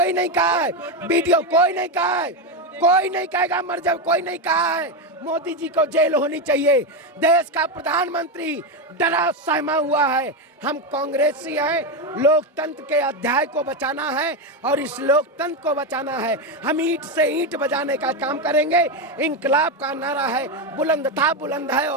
नहीं कहा है, वीडियो कोई नहीं कहा है। कोई नहीं कहेगा मर जाओ, कोई नहीं कहा है। मोदी जी को जेल होनी चाहिए। देश का प्रधानमंत्री डरा सहमा हुआ है। हम कांग्रेसी हैं, लोकतंत्र के अध्याय को बचाना है और इस लोकतंत्र को बचाना है। हम ईंट से ईंट बजाने का काम करेंगे। इंकलाब का नारा है, बुलंद था, बुलंद है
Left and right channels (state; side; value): normal; both; correlation 0.10